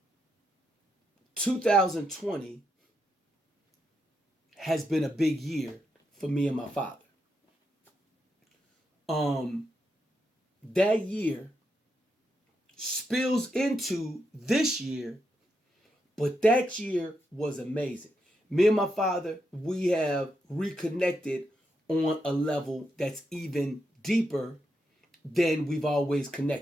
(2020) has been a big year for me and my father. That year spills into this year, but that year was amazing. Me and my father, we have reconnected on a level that's even deeper than we've always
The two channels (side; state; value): both; normal; correlation 0.83